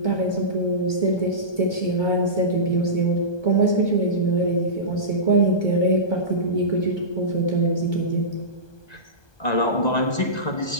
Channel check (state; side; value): late; right; 1.2 ms